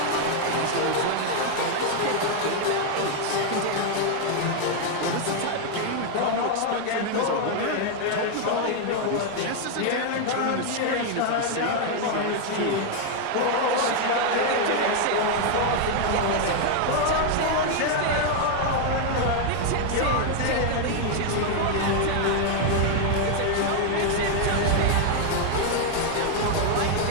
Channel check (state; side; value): different; both; correlation 0.00